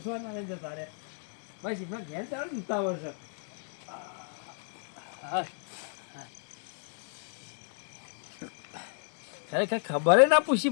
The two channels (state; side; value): silent; right; 56 dB below the other